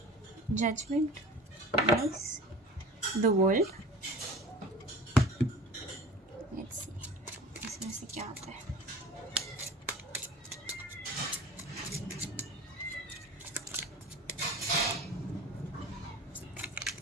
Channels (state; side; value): normal; both; correlation 0.39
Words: judgement, nice. The world, let's see इसमें से क्या आता है।